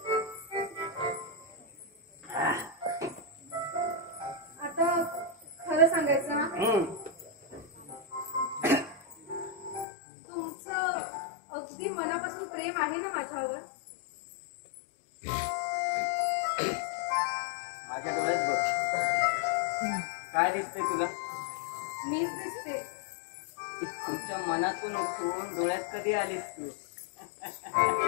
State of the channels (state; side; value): drops out; right; at 9.9 s